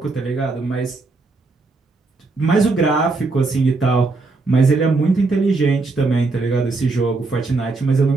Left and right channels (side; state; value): left; quieter; 3.6 dB